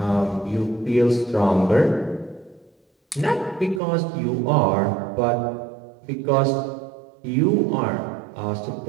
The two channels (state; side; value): drops out; left; at 3.8 s